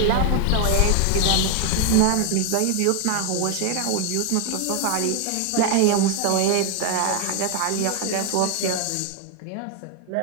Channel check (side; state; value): both; different; correlation 0.01